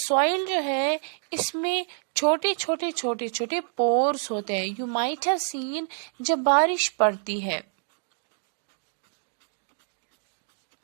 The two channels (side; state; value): left; silent; digital silence